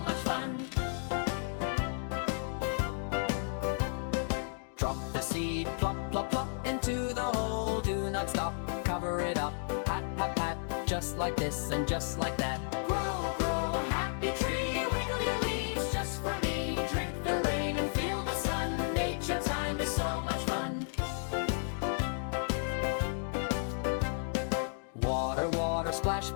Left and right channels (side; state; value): right; silent; digital silence